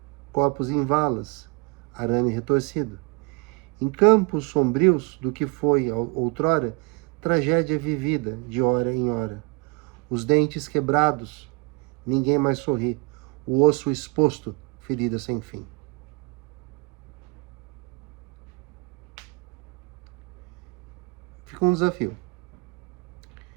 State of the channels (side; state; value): left; quieter; 30.2 dB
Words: corpos em valas, arame retorcido. Em campos sombrios do que foi outrora, tragédia vivida de hora em hora. Os dentes quebrados, ninguém mais sorri. O osso exposto, ferida sem fim. Fica um desafio.